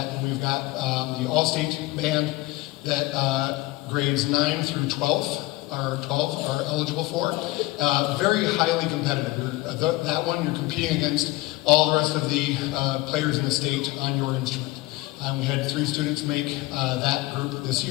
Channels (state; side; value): quieter; right; 19.7 dB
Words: And we've got the all-state band that grades 9 through 12 are eligible for. Very highly competitive. That one, you're competing against all the rest of the players in the state on your instrument. We had 3 students make that group this